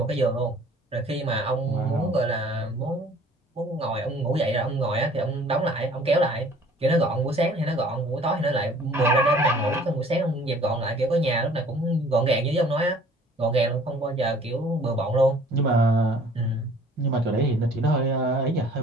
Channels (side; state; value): both; normal; correlation 0.53